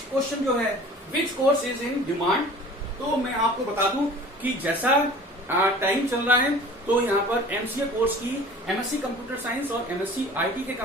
क्वेश्चन जो है, which course is in demand. तो मैं आपको बता दूं कि जैसा टाइम चल रहा है तो यहाँ पर एमसीए कोर्स की एमएससी कंप्यूटर साइंस और एमएससी आईटी के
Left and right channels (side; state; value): both; normal; correlation 0.44